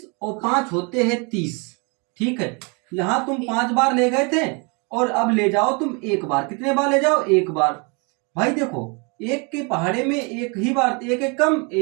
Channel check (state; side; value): quieter; left; 32.6 dB